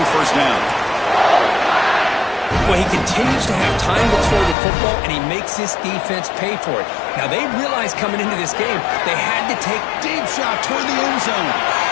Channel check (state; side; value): drops out; right; at 4.5 s